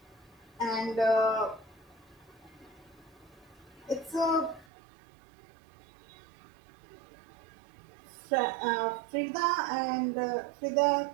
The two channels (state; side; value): drops out; left; at 4.7 s